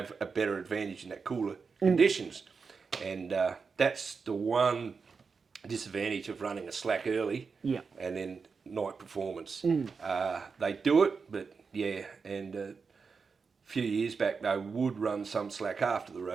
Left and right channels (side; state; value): left; quieter; 5.2 dB